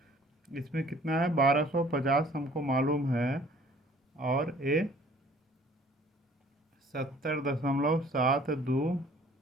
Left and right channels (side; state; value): both; normal; correlation 0.53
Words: इसमें कितना है? 1250 हमको मालूम है और ये 70.72